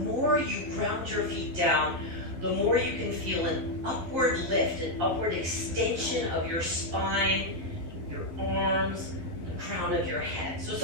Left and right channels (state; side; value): late; left; 12 ms